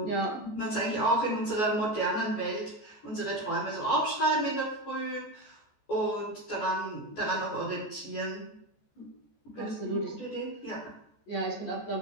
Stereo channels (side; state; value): right; late; 14 ms